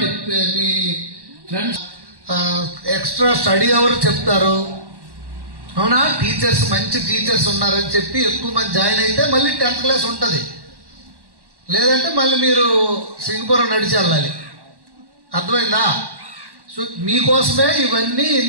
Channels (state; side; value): late; left; 1.1 ms